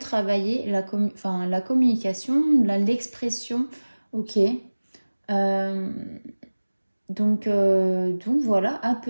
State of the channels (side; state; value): both; inverted; correlation -1.00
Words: la communication, l'expression. Ok. Euh, donc voilà, à